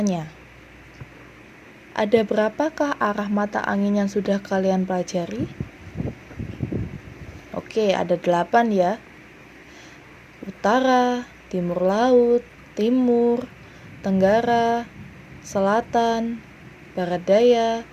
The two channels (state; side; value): identical; both; correlation 1.00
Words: ada berapakah arah mata angin yang sudah kalian pelajari? Oke, ada 8 ya. Utara, timur laut, timur, tenggara, selatan, barat daya,